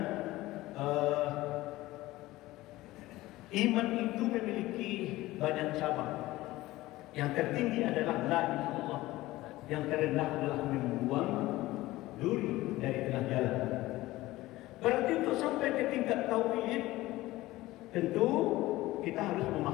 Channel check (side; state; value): right; quieter; 17.8 dB